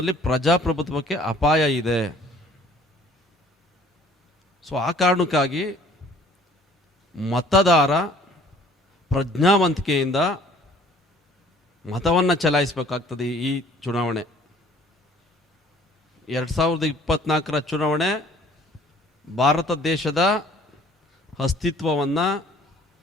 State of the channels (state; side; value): normal; both; correlation 0.55